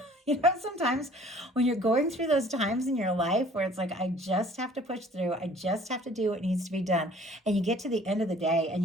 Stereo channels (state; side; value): normal; both; correlation 0.53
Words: sometimes when you're going through those times in your life where it's like, I just have to push through, I just have to do what needs to be done. And you get to the end of the day and